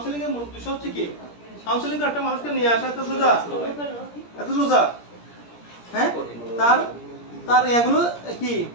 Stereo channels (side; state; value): right; late; 17 ms